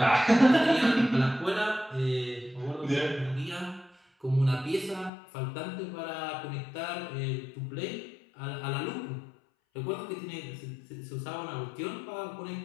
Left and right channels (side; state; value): right; drops out; at 5.1 s